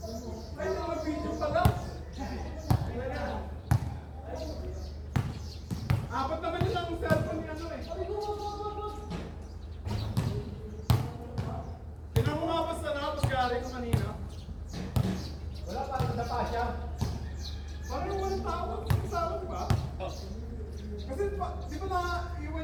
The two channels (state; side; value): identical; both; correlation 1.00